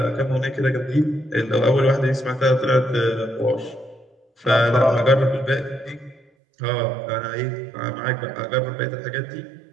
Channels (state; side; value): drops out; left; at 6.2 s